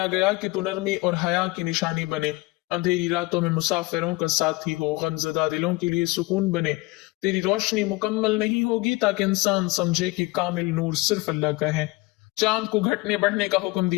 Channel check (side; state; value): right; quieter; 22.5 dB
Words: گیا کہ تو نرمی اور حیا کی نشانی بنے، اندھیری راتوں میں مسافروں کا ساتھی ہو، غمزدہ دلوں کے لیے سکون بنے۔ تیری روشنی مکمل نہیں ہوگی تاکہ انسان سمجھے کہ کامل نور صرف اللہ کا ہے۔ چاند کو گھٹنے بڑھنے کا حکم